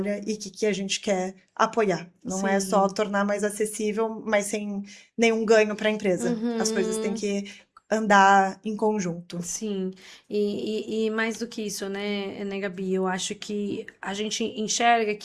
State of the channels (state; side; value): identical; both; correlation 1.00